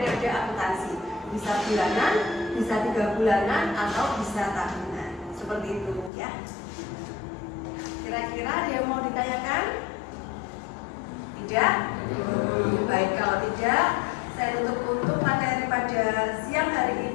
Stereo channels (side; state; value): right; drops out; at 6.1 s